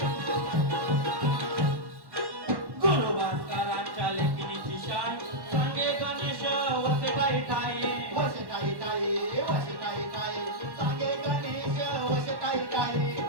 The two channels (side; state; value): left; late; 1.1 ms